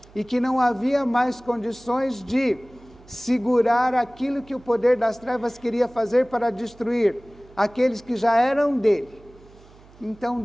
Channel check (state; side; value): noise; right; hum, 25 dB below the sound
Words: e que não havia mais condições de segurar aquilo que o poder das trevas queria fazer para destruir aqueles que já eram dele, então